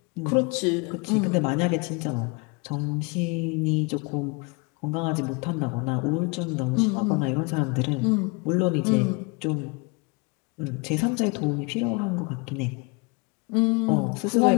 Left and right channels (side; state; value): right; quieter; 29.6 dB